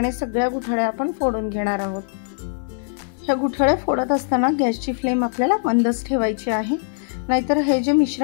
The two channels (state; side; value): silent; right; 64 dB below the other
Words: सगळ्या गुठळ्या आपण फोडून घेणार आहोत। ह्या गुठळ्या फोडत असताना गॅसची फ्लेम आपल्याला मंदच ठेवायची आहे, नाहीतर हे जे